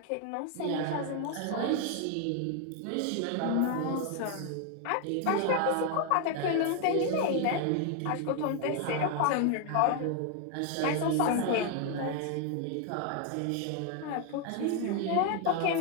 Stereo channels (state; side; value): different; both; correlation 0.01